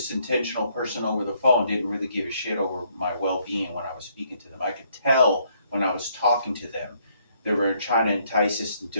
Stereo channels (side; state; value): both; inverted; correlation -0.69